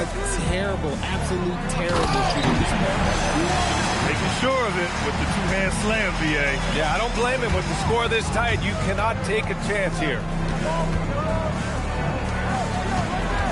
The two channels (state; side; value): identical; both; correlation 1.00